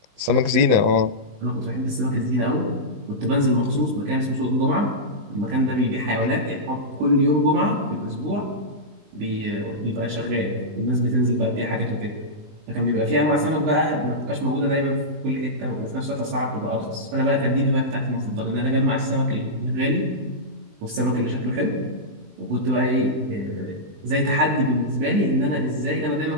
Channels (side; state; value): left; late; 20 ms